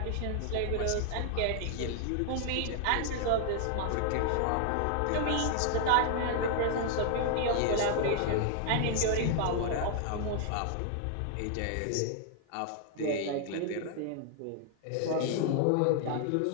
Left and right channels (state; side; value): different; both; correlation 0.00